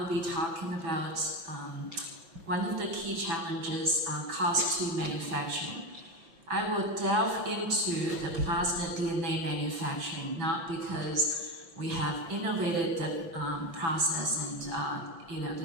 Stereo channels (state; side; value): late; left; 6.0 ms